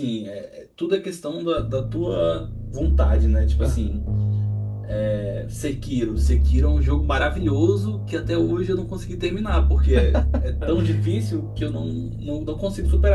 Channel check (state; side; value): identical; both; correlation 1.00